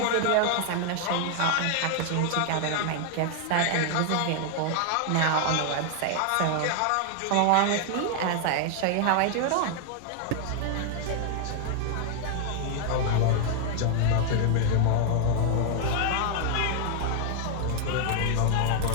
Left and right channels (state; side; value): different; both; correlation 0.00